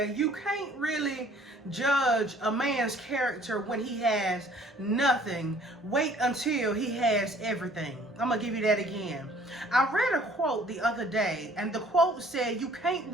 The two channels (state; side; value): normal; both; correlation 0.56